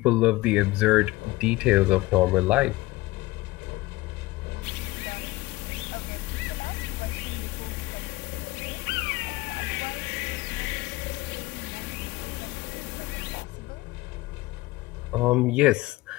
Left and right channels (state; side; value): quieter; right; 20.0 dB